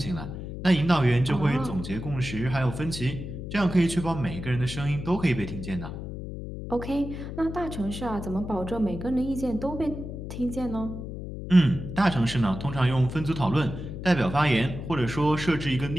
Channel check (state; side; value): noise; left; hum, 8 dB below the sound